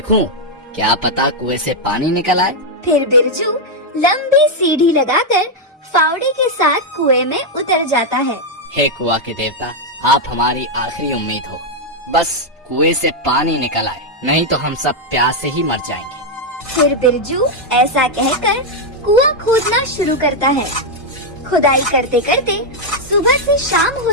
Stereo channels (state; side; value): normal; both; correlation 0.00